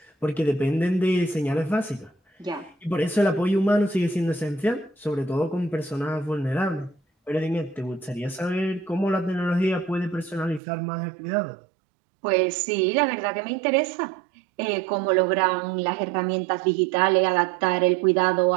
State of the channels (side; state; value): left; drops out; at 10.6 s